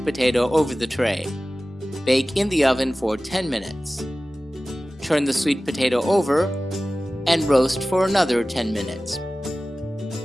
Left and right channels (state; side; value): normal; both; correlation 0.96